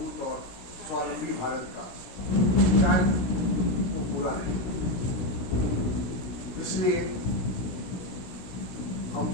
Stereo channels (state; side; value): late; right; 17 ms